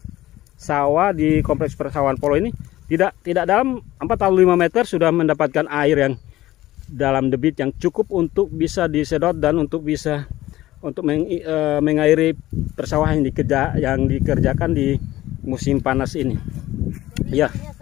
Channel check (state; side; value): quieter; right; 15.8 dB